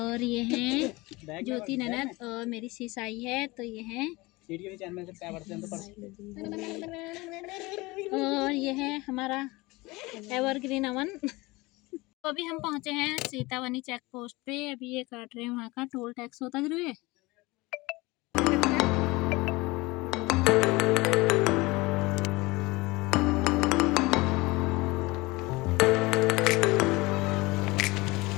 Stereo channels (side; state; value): right; quieter; 22.5 dB